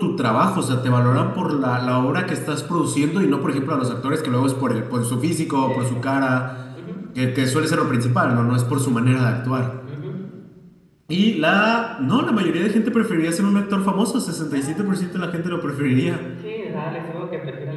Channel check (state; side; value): identical; both; correlation 1.00